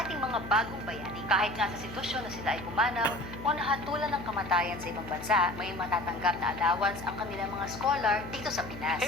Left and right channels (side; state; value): left; noise; hum, 12 dB below the sound